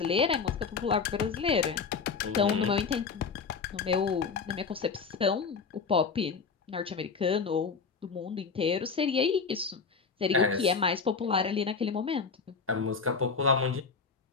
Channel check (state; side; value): quieter; right; 5.3 dB